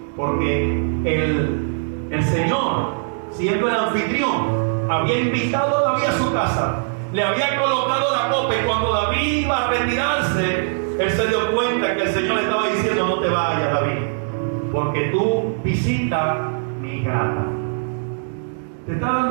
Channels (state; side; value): silent; left; digital silence